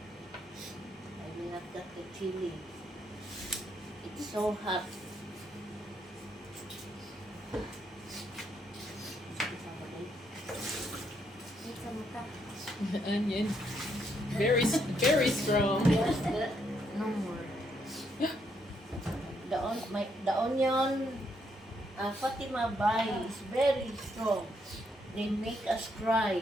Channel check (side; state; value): both; normal; correlation 0.75